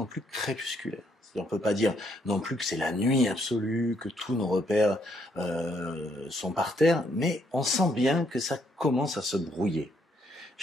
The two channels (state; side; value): normal; both; correlation 0.72